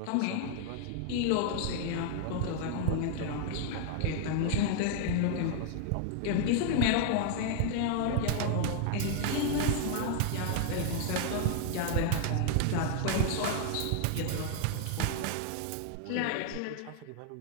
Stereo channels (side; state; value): both; different; correlation 0.00